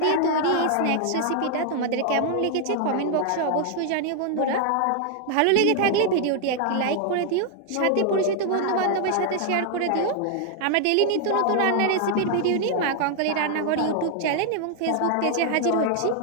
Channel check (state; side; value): different; both; correlation 0.00